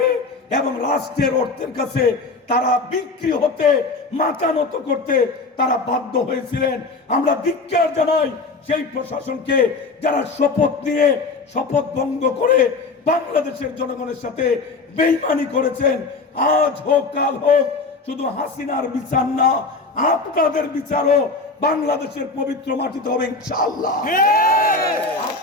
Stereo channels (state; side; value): quieter; right; 3.8 dB